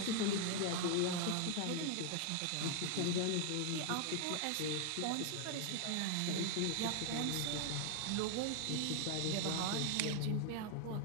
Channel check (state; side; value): different; both; correlation 0.00